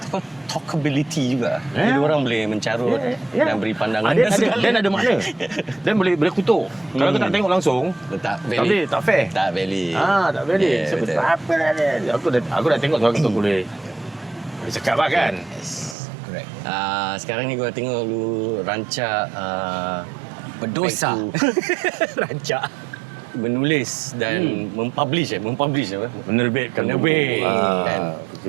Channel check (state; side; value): drops out; left; at 16.0 s